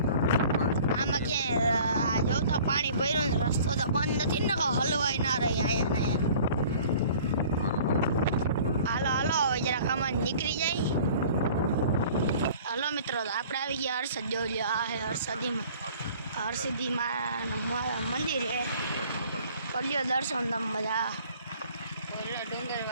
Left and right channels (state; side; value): inverted; both; correlation -0.49